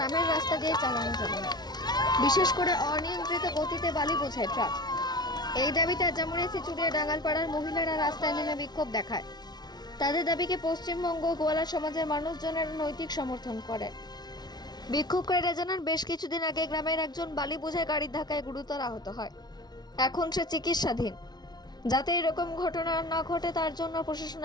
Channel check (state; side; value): late; right; 0.19 ms